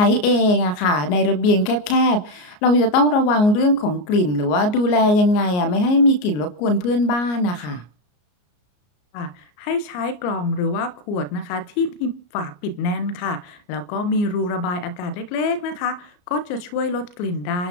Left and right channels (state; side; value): late; right; 33 ms